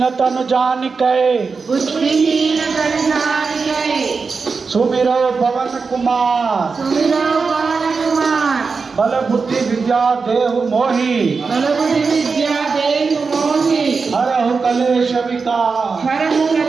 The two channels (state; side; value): quieter; left; 4.8 dB